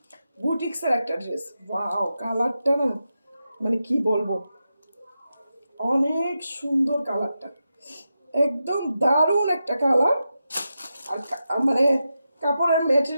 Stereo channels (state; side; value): inverted; both; correlation -0.89